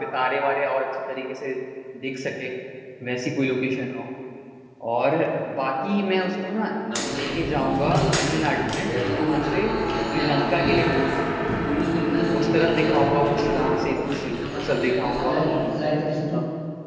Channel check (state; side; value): identical; both; correlation 1.00